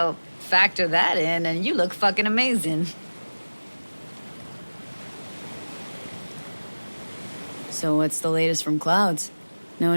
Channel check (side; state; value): both; inverted; correlation -1.00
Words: factor that in and you look fucking amazing. So what's the latest from Clouds? Know